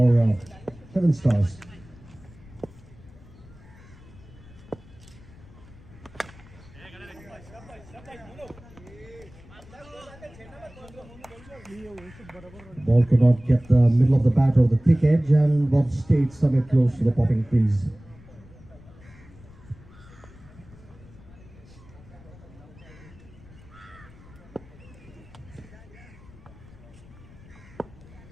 Heaven Stars. Ball could not get the middle of the bat or the thick edge and was stayed somewhere close to the popping crease.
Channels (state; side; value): noise; left; rumble, 21 dB below the sound